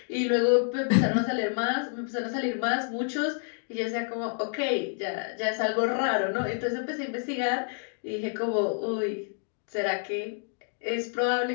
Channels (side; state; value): right; silent; 59 dB below the other